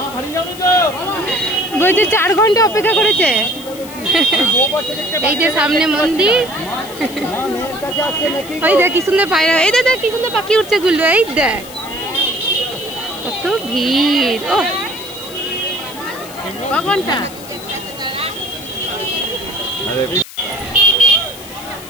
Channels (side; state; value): left; noise; hiss, 16 dB below the sound